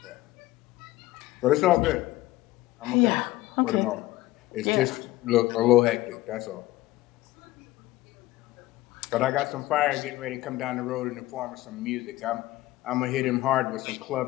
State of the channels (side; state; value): right; quieter; 17.4 dB